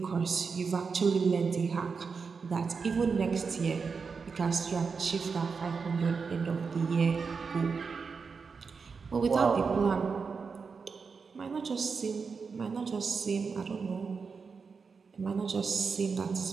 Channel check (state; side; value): quieter; left; 5.2 dB